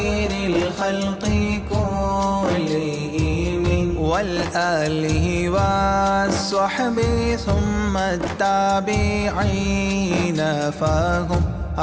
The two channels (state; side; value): identical; both; correlation 1.00